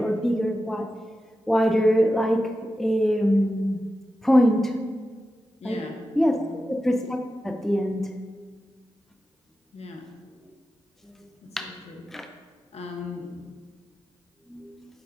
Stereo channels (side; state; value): both; normal; correlation 0.92